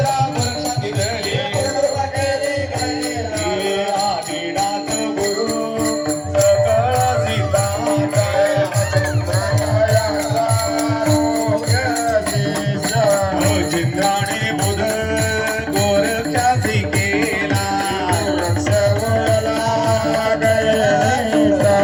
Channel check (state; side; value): identical; both; correlation 1.00